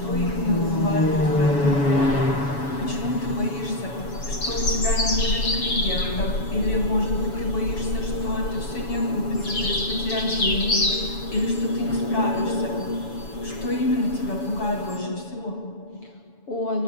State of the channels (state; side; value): late; right; 7.1 ms